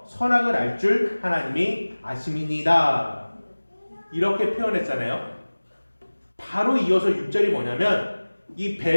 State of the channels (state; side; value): inverted; both; correlation -1.00